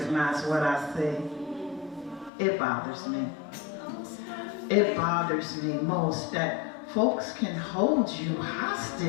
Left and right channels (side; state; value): right; drops out; at 2.3 s